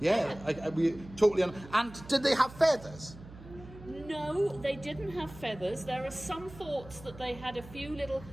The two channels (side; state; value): right; noise; hum, 17 dB below the sound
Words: we totally. And did they have feathers? No, they didn't have feathers. There are some thoughts that they had a few little